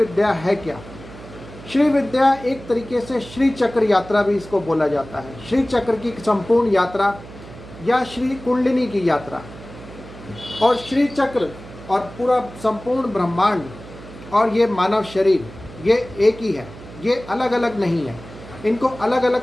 है क्या। श्री विद्या एक तरीके से श्री चक्र यात्रा भी इसको बोला जाता है। श्री चक्र की संपूर्ण यात्रा या श्री कुंडलिनी की यात्रा। और श्री चक्र और पूरा संपूर्ण ब्रह्मांड और ये मानव शरीर, ये एक ही है, ये अलग अलग नहीं है। इनको अलग अलग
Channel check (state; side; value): noise; right; hum, 16 dB below the sound